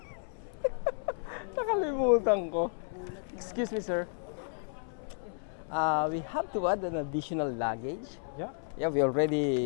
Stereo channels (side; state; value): right; silent; 56 dB below the other